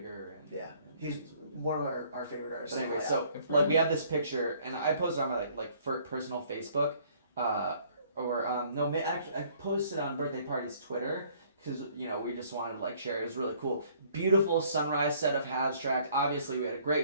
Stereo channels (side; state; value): both; inverted; correlation -0.60